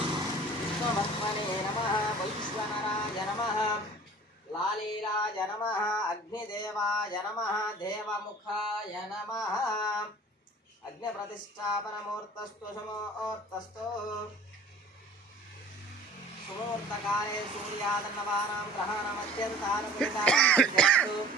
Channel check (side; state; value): both; normal; correlation 0.46